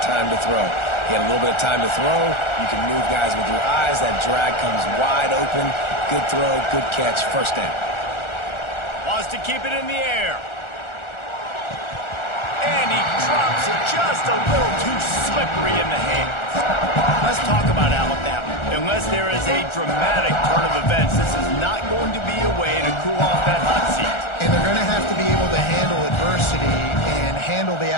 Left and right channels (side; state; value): right; late; 1.4 ms